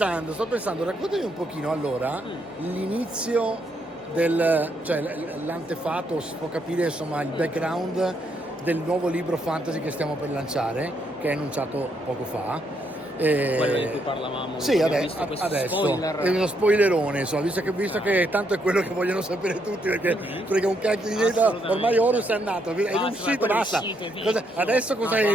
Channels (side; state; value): both; normal; correlation 0.75